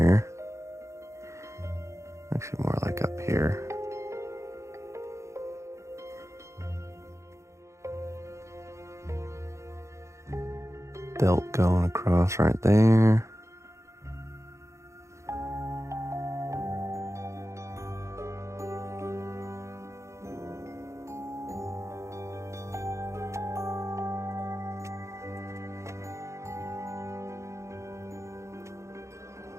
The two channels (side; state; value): left; late; 0.14 ms